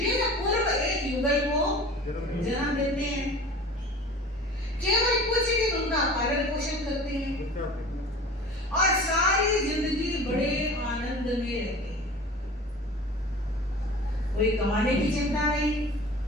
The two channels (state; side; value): normal; both; correlation 0.40